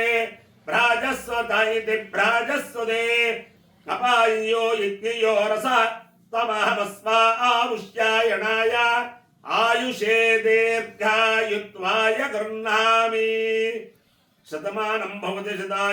భ్రాజస్వత ఇది భ్రాజస్వదే అపాయో ఇత్యయో రస తమహమస్మా ఆముష్యాయణాయ ఆయుషే దీర్ఘాయుత్వాయ గృహ్ణామి శతమానం భవతి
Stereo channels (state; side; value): identical; both; correlation 1.00